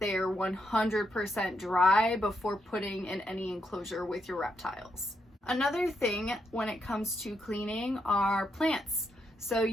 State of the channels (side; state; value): both; normal; correlation 0.80